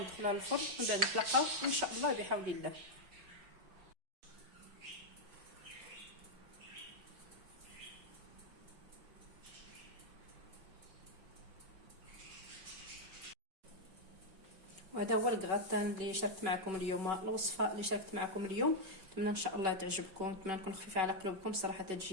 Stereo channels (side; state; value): left; late; 5.3 ms